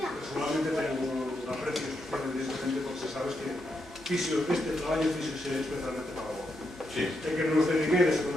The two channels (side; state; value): both; normal; correlation 0.82